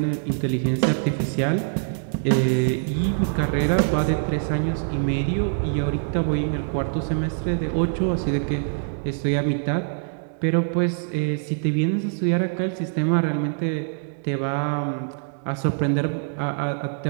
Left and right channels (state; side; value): silent; left; digital silence